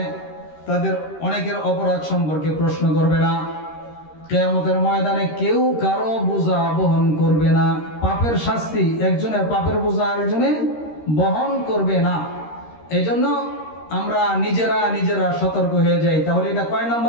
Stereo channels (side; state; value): right; late; 13 ms